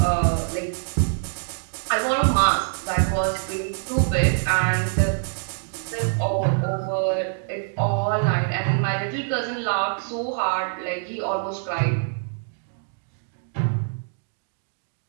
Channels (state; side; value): silent; left; 62 dB below the other